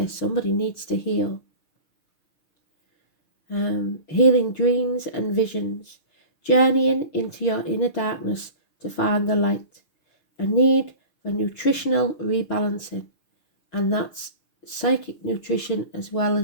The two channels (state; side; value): late; right; 6.6 ms